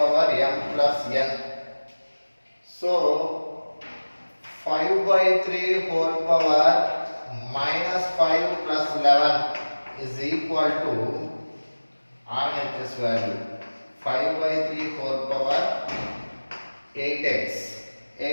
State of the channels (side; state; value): both; inverted; correlation -1.00